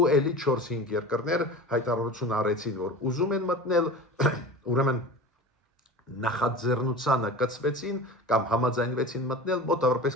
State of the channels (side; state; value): both; normal; correlation 0.34